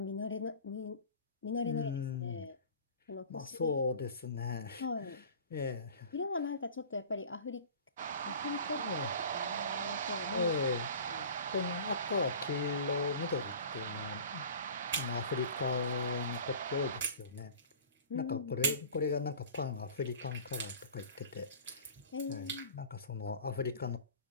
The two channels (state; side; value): inverted; both; correlation -0.40